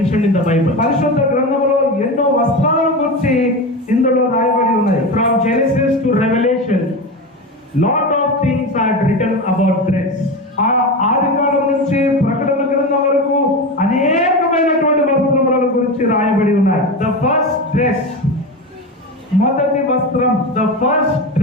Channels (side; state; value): both; normal; correlation 0.22